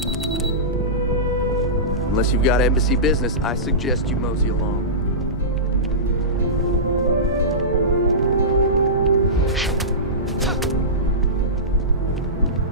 you've got embassy business, I suggest you mosey along.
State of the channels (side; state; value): both; normal; correlation -0.19